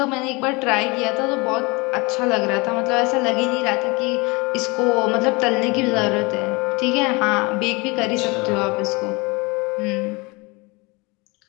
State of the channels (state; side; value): quieter; right; 26.6 dB